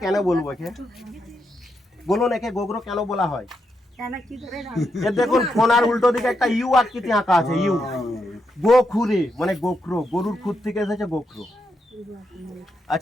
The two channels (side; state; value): both; normal; correlation 0.82